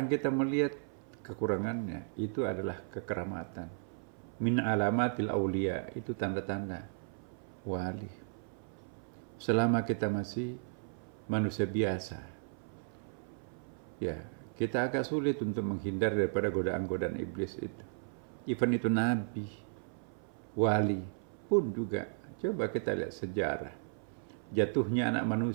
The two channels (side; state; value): left; silent; 54 dB below the other